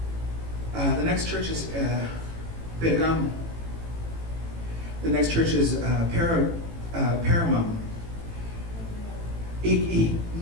The next church is Pergamum. The next church is Pergamum. Y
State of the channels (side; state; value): left; late; 18 ms